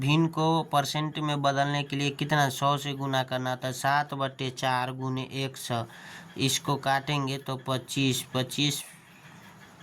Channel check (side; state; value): both; identical; correlation 1.00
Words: को परसेंट में बदलने के लिए कितना 100 से गुना करना था। 7/4 गुने 100, इसको काटेंगे तो 25, 25